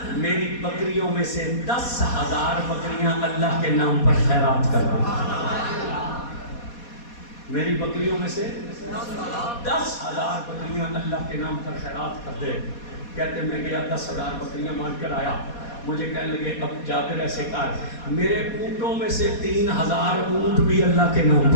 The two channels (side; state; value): right; late; 4.2 ms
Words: میری بکریوں میں سے 10,000 بکریاں اللہ کے نام پر خیرات کر دو. میری بکریوں میں سے 10,000 بکریاں اللہ کے نام پر خیرات کر دے. کہتے میں گیا 10,000 بکریاں مان کر آیا. مجھے کہنے لگے اب جابر ایسے کر میرے اونٹوں میں سے 3,000 اونٹ بھی اللہ کے نام